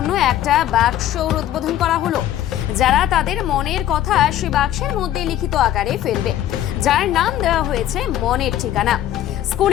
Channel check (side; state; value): right; quieter; 12.2 dB